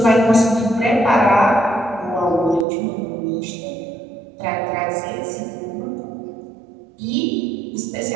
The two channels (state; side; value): drops out; left; at 2.7 s